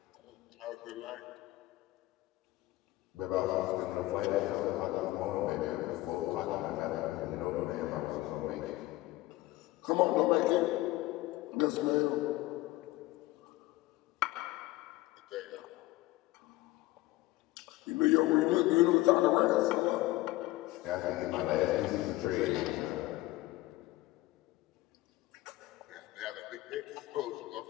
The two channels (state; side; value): quieter; right; 18.4 dB